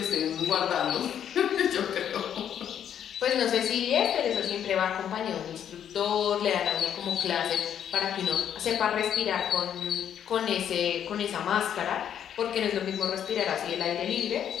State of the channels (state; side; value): quieter; right; 9.3 dB